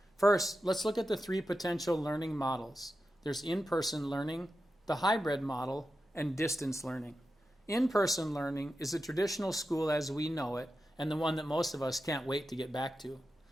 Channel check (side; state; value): both; normal; correlation 0.91